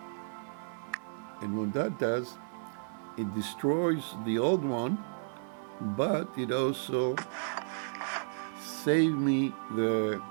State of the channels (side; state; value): left; silent; 56 dB below the other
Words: And what that does, it destroys the old one, but it also saved me the